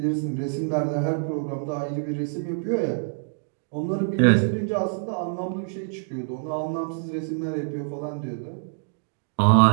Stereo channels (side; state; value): left; silent; digital silence